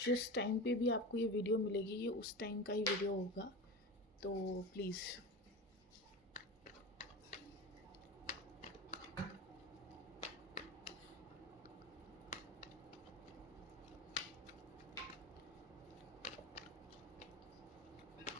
जिस टाइम पे भी आपको ये वीडियो मिलेगी ये उस टाइम का ही वीडियो होगा, तो प्लीज़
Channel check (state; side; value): normal; both; correlation 0.27